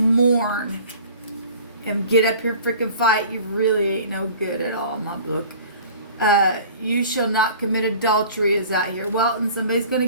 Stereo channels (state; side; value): inverted; both; correlation -0.46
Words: and get up here and freaking fight. You really ain't no good at all in my book. You shall not commit adultery is out here. Well, and somebody's going